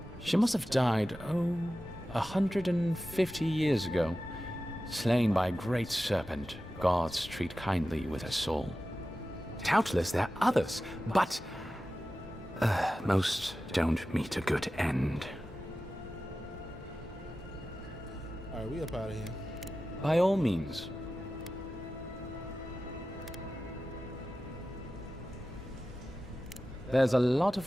She must have died, 150 years ago. Slain by a great serpent, gods treat kindly with her soul. Doubtless there are others, but most don't meet a good end. Alright, we up out of here. By all means. There's a lot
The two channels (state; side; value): normal; both; correlation 0.94